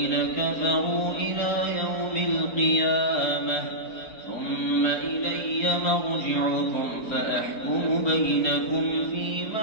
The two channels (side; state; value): right; late; 4.3 ms